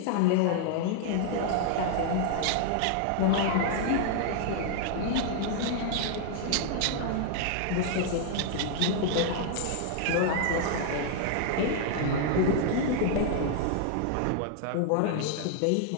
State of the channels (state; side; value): different; both; correlation 0.00